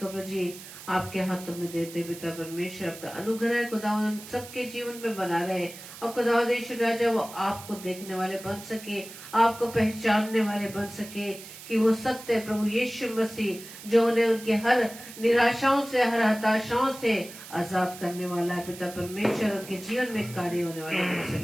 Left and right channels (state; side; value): noise; right; hiss, 15 dB below the sound